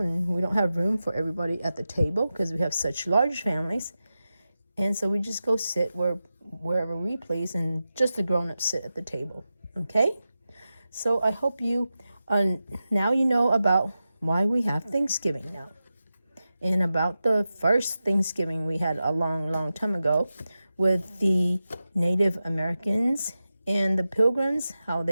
we don't have room for everybody at the table because we have such large families. And so we just go sit wherever we please, and just the grown-ups sit at the table, okay? So I hope you, now you know about why we have Thanksgiving now. And about the first Thanksgiving we had a long, long time ago with the Native Americans and the Pilgrims, how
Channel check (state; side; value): inverted; both; correlation -0.92